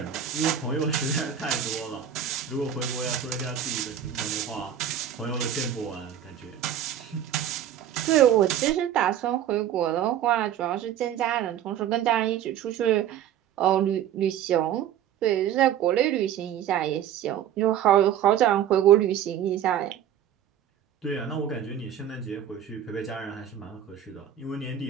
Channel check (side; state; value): left; quieter; 10.0 dB